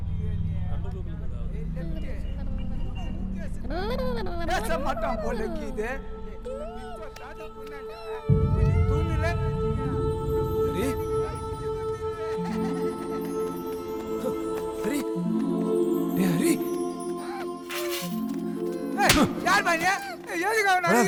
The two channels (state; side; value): identical; both; correlation 1.00